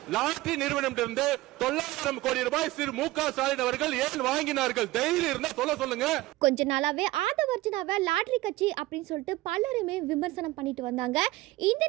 லாட்டரி நிறுவனம் 900 கோடி ரூபாய் திரு மு.க. ஸ்டாலின் அவர்கள் ஏன் வாங்கினார்கள்? தைரியம் இருந்தா சொல்லுங்க. கொஞ்ச நாளாவே ஆதவர்ஜுனாவை லாட்டரி கட்சி அப்படின்னு சொல்லிட்டு பலருமே விமர்சனம் பண்ணிட்டு வந்தாங்க. இந்த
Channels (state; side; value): quieter; left; 18.5 dB